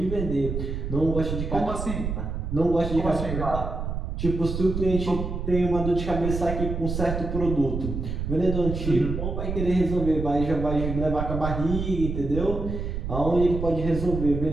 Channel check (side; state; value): right; noise; rumble, 4 dB below the sound